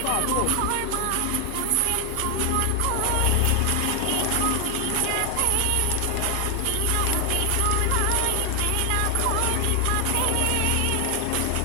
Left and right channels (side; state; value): both; different; correlation 0.00